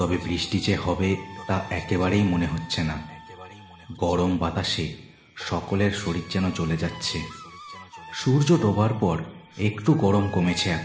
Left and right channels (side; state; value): both; identical; correlation 1.00